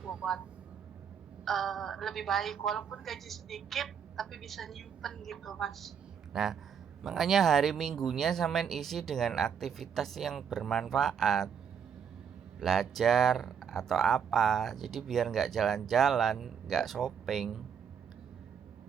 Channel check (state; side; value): quieter; left; 7.5 dB